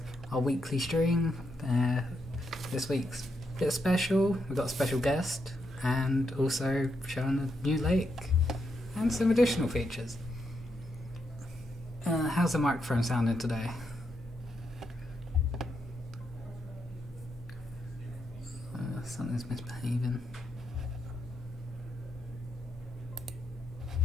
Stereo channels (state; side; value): normal; both; correlation 0.81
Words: our weekly stream. This week's a bit special. We've got a special guest and also showing a new lake and some additional features. How's the microphone sounding today? Something's misbehaving.